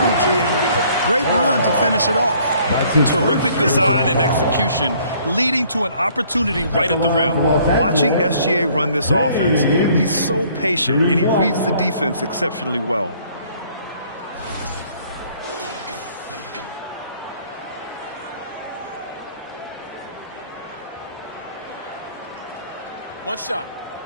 and a great run to finish it off. Terrific design and execution, leading to an opportunity right at the rim. Watching SGA run this offense, he's so patient, and he reads the defense exceptionally well. One shot.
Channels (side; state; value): both; inverted; correlation -0.60